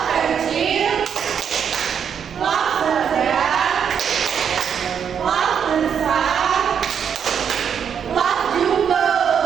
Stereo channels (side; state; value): left; quieter; 7.7 dB